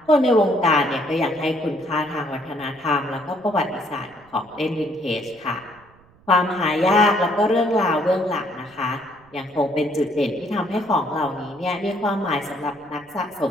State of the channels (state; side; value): noise; right; rumble, 29 dB below the sound